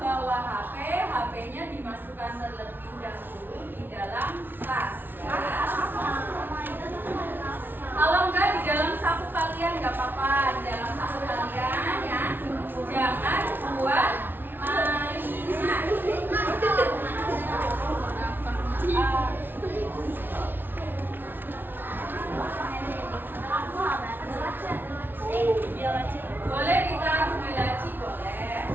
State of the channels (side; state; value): left; late; 0.097 ms